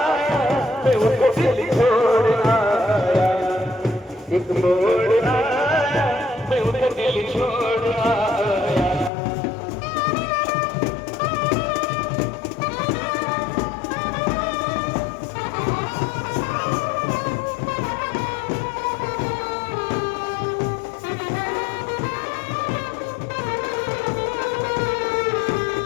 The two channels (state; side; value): drops out; right; at 9.1 s